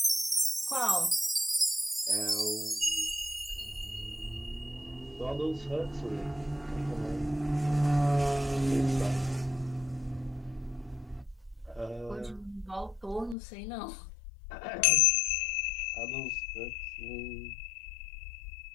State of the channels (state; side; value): drops out; right; at 13.4 s